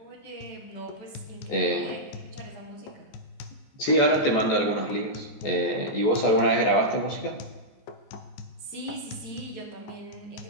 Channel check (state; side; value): late; right; 14 ms